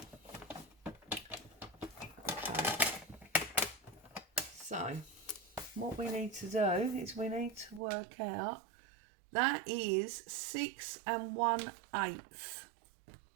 Okay. So what we need to do is we need to work out. That is 6 1/8,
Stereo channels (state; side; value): drops out; left; at 7.8 s